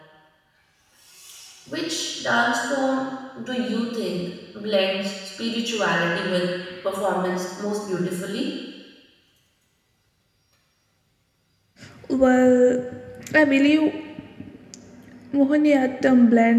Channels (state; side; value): identical; both; correlation 1.00